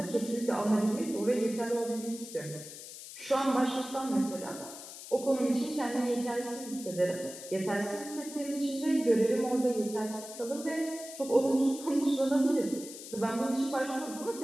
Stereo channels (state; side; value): noise; left; hiss, 13 dB below the sound